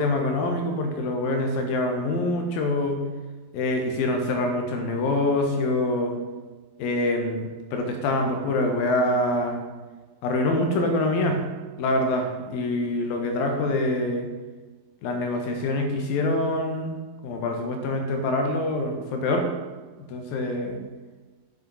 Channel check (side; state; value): right; late; 11 ms